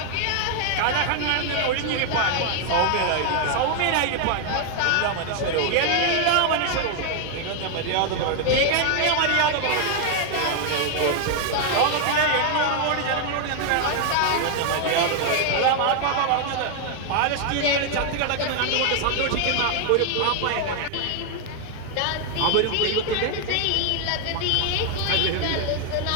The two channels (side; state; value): both; different; correlation 0.00